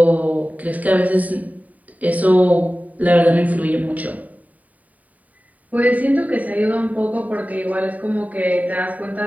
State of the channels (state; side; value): late; left; 0.072 ms